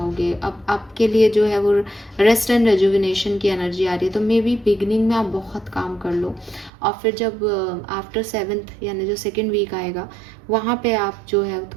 अब आपके लिए जो है वो रेस्ट एंड रेजुविनेशन की एनर्जी आ रही है, तो मे बी बिगनिंग में आप बहुत काम कर लो और फिर जब आफ्टर 7th यानी जो 2nd वीक आएगा वहाँ पे आप जो है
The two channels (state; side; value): drops out; left; at 6.7 s